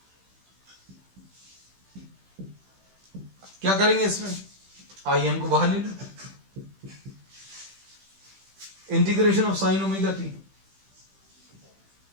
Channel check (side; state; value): left; late; 15 ms